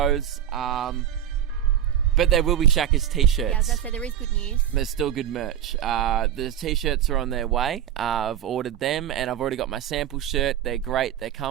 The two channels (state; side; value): quieter; left; 10.3 dB